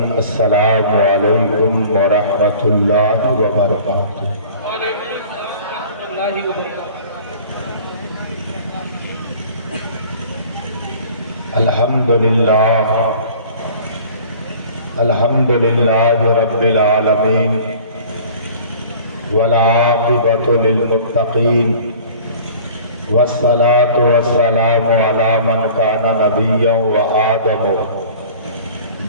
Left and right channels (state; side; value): inverted; both; correlation -0.46